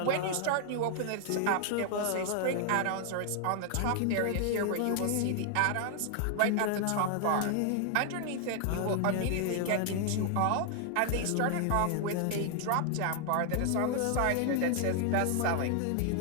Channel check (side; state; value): both; different; correlation 0.00